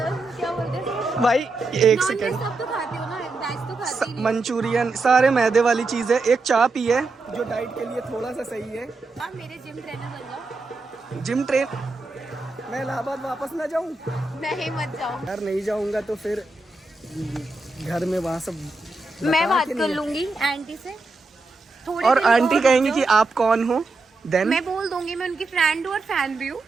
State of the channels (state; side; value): quieter; left; 3.4 dB